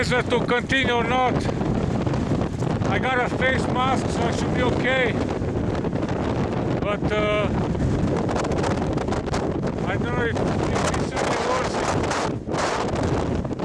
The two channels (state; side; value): identical; both; correlation 1.00